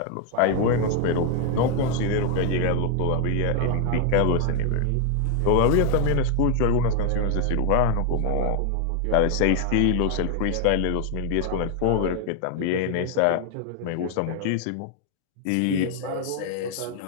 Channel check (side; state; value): both; different; correlation 0.00